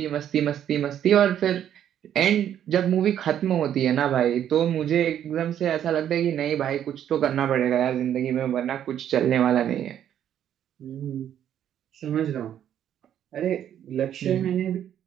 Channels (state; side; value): quieter; left; 10.2 dB